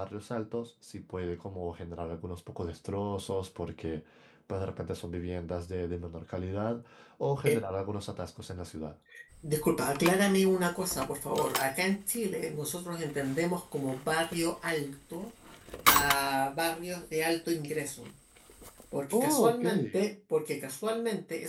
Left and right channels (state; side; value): identical; both; correlation 1.00